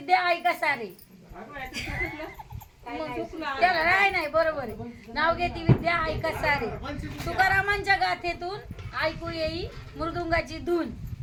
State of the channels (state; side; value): identical; both; correlation 1.00